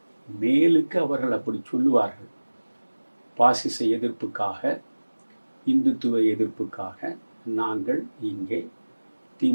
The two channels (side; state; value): both; inverted; correlation -1.00